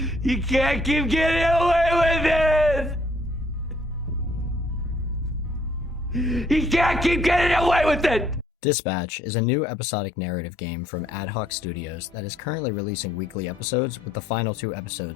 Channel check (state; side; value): normal; both; correlation 0.65